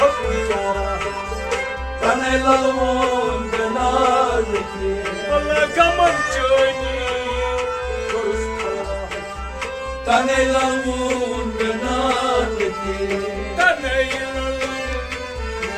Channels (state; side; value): identical; both; correlation 1.00